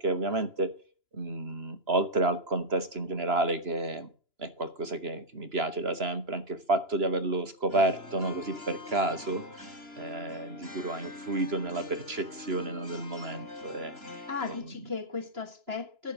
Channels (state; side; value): late; left; 2.9 ms